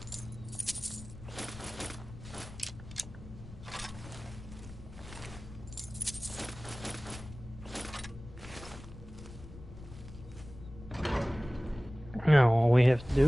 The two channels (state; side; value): noise; left; rumble, 15 dB below the sound